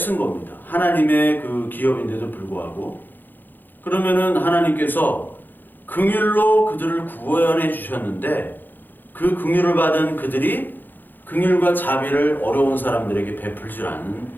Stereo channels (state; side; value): late; right; 0.089 ms